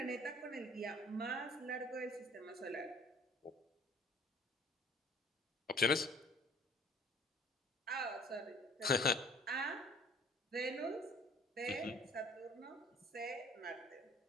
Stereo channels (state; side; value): normal; both; correlation 0.53